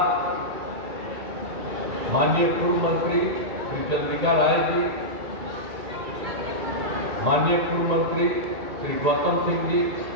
माननीय पूर्व मंत्री श्री चंद्रिका राय जी, माननीय पूर्व मंत्री श्री गौतम सिंह जी,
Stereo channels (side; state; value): left; late; 1.8 ms